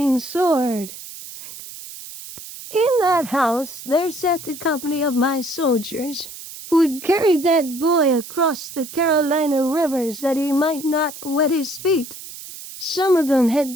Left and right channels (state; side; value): noise; right; hiss, 13 dB below the sound